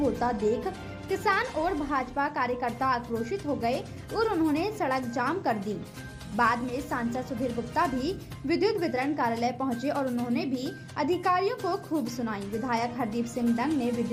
देख किसान और भाजपा कार्यकर्ता आक्रोशित हो गए और उन्होंने सड़क जाम कर दी। बाद में सांसद सुधीर गुप्ता भी विद्युत वितरण कार्यालय पहुंचे और उन्होंने भी अधिकारियों को खूब सुनाई। विधायक हरदीप सिंह डंग ने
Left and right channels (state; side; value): identical; both; correlation 1.00